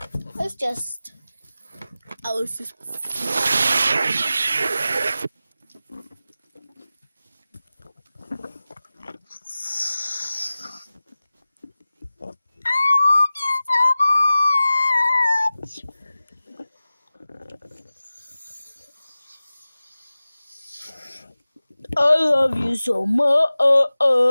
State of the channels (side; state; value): both; inverted; correlation -0.96